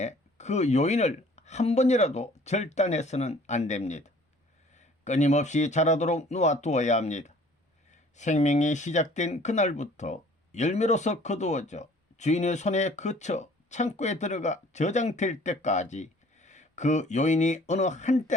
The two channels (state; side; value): normal; both; correlation 0.53